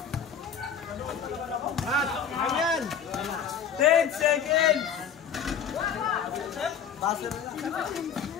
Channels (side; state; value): right; quieter; 7.3 dB